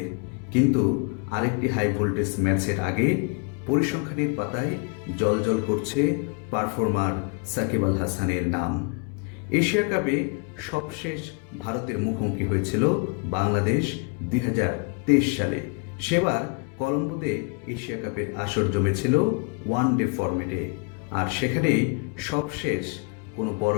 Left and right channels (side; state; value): right; quieter; 32.9 dB